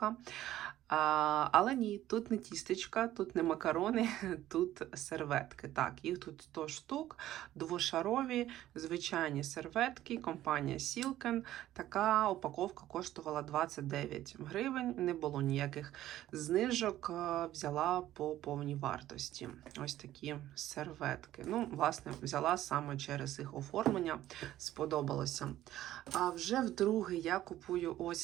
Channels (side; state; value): left; quieter; 13.7 dB